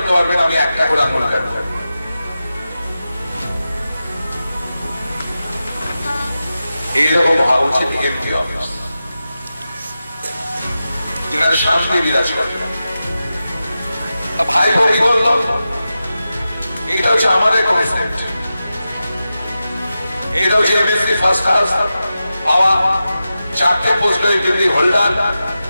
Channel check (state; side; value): inverted; both; correlation -0.92